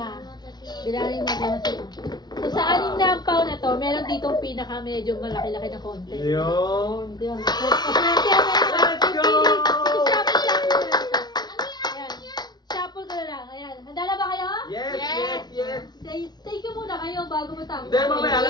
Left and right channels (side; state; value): right; late; 0.20 ms